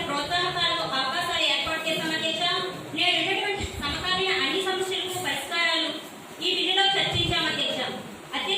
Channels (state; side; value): identical; both; correlation 1.00